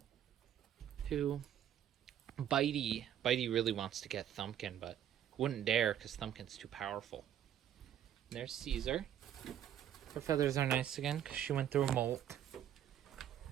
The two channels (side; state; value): left; quieter; 10.4 dB